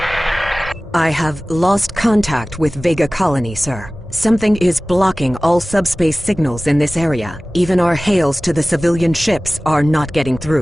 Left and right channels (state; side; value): normal; both; correlation 0.98